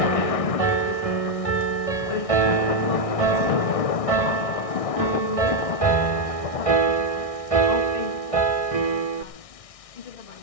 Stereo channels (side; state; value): right; late; 1.6 ms